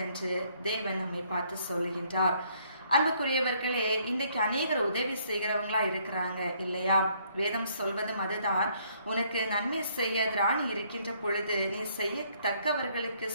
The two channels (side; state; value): both; inverted; correlation -0.67